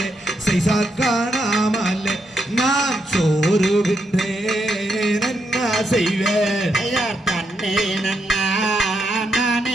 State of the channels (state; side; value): normal; both; correlation 0.81